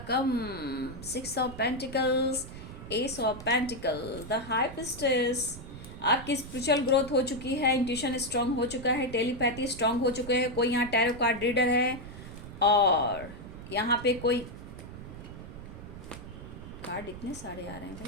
कम। 6 of pentacles, S of pentacle, the high priestess. आपकी स्पिरिचुअल ग्रोथ हो चुकी है, इंट्यूशन स्ट्रांग हो चुका है, टेलीपैथी स्ट्रांग हो चुके हैं। कोई यहाँ टैरो कार्ड रीडर है और यहाँ पे कोई कार्ड इतने सारे आ रहे हैं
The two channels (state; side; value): noise; right; rumble, 12 dB below the sound